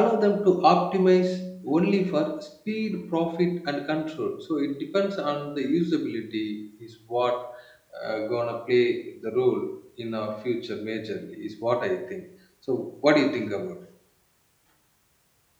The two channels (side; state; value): both; identical; correlation 1.00